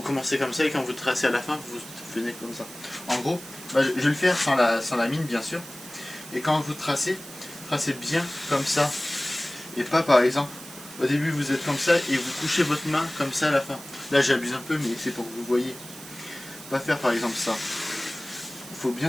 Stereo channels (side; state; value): right; noise; hiss, 15 dB below the sound